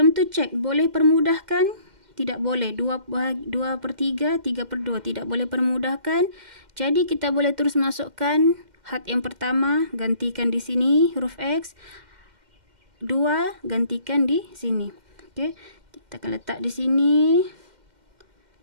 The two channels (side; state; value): left; late; 2.1 ms